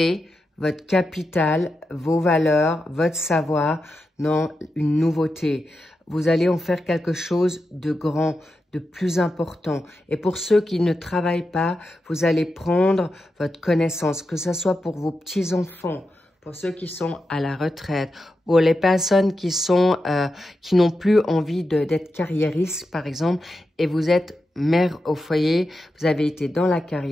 votre capital, vos valeurs, votre savoir dans une nouveauté. Vous allez en faire quelque chose de grand, de plus important. Et pour ceux qui ne travaillent pas, vous allez prendre votre connaissance, que ce soit pour vos petits-enfants, pour ceux qui sont à la retraite, pour les personnes qui n'ont plus envie d'être carriéristes, par exemple, et vous êtes mère au foyer, vous avez été dans la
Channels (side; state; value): both; normal; correlation 0.88